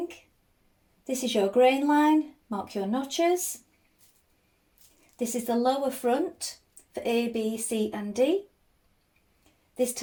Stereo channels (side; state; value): both; identical; correlation 1.00